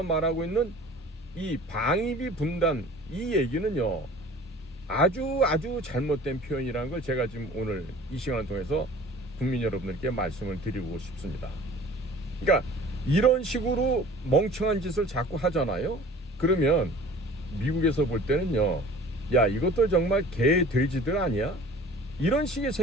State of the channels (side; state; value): both; normal; correlation 0.46